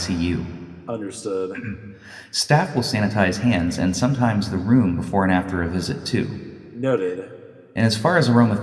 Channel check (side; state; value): both; identical; correlation 1.00